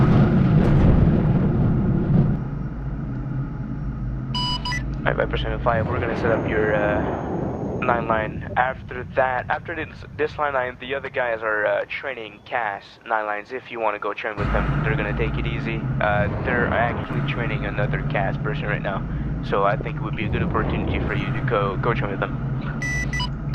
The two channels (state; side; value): identical; both; correlation 1.00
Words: Alright, Viper 75, we're gonna set up your 9 line. After this line, the other guys are training CAS 9 lines. If you want to go train with them, they're gonna take it easy. They're actually training another CAS person right now, so I think it would be a good opportunity for you to go train with them.